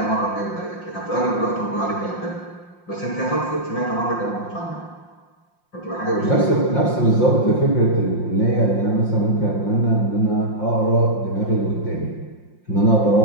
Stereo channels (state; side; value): late; right; 5.7 ms